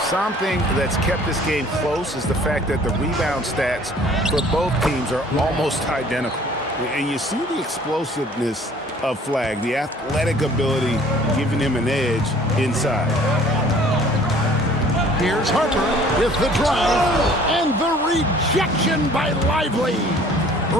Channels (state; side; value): normal; both; correlation 0.53